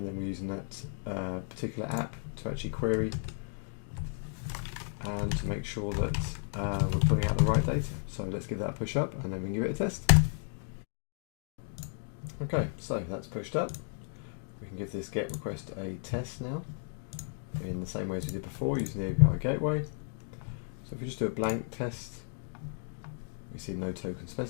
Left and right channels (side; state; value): right; silent; 55 dB below the other